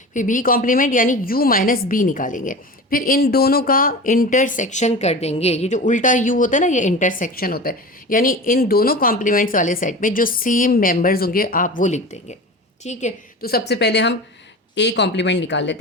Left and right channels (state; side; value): normal; both; correlation 0.32